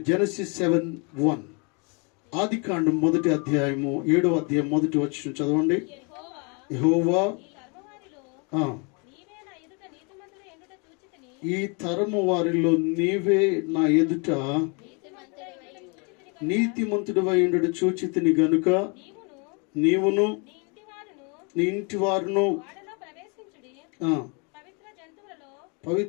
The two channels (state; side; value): quieter; right; 33.5 dB